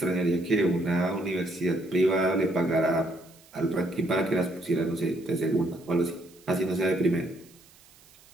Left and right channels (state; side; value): noise; right; hiss, 27 dB below the sound